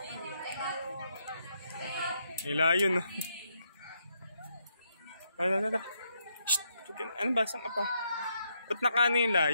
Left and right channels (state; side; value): inverted; both; correlation -0.78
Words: May layon. Tara. Shhh! Ano ba? Saan ka pa? Ba't nakano yung